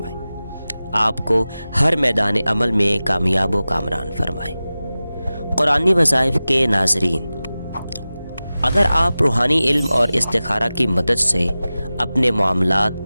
آپ کو ہر میدان عمل میں کامیاب و کامران فرمائے۔ قرآنی وظائف کے ناظرین، اگر آپ روحانی علم اور استخارہ کی مدد سے اپنے معاملات،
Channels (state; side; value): inverted; both; correlation -0.96